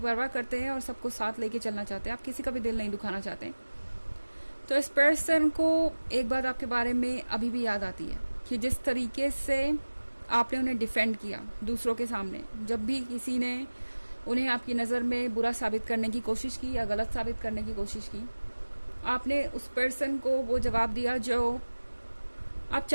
करते हैं और सबको साथ लेके चलना चाहते हैं। आप किसी का भी दिल नहीं दुखाना चाहते। तो इस पर्सन को एक बात आपके बारे में अभी भी याद आती है कि जिस तरीके से आपने उन्हें डिफेंड किया दूसरों के सामने, जब भी किसी ने उन्हें आपकी नज़र में बुरा साबित करने की कोशिश की या गलत साबित करने की कोशिश की, आपने उस पर्सन को वो जवाब दिया जो आप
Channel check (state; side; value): inverted; both; correlation -1.00